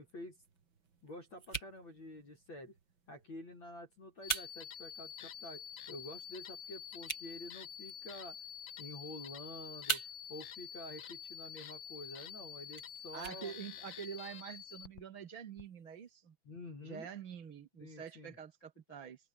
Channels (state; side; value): late; right; 6.0 ms